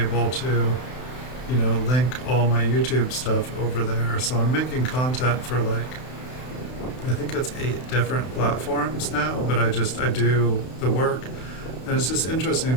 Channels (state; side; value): late; right; 32 ms